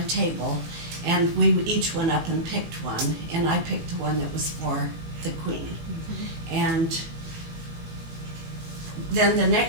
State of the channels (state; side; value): late; left; 18 ms